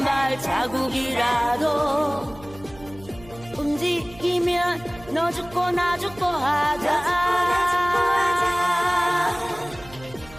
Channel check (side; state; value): right; noise; hum, 20 dB below the sound